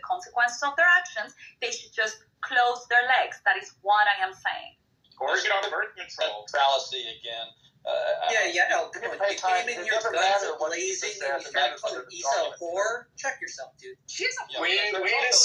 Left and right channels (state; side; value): identical; both; correlation 1.00